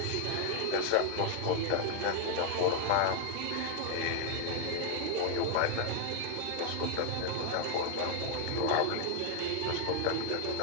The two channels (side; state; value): both; different; correlation 0.00